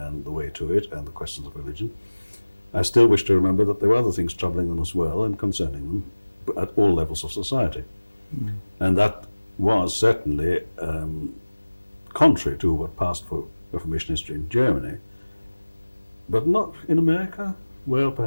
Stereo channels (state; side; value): inverted; both; correlation -1.00